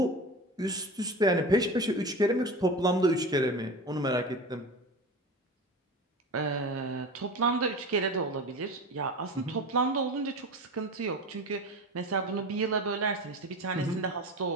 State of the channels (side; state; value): both; normal; correlation 0.30